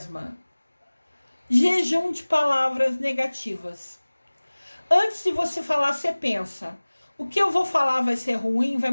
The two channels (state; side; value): inverted; both; correlation -1.00